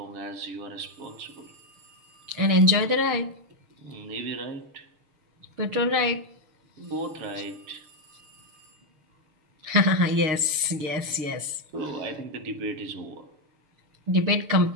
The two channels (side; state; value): left; late; 6.5 ms